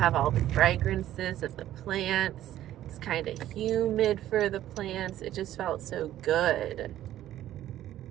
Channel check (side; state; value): left; quieter; 12.9 dB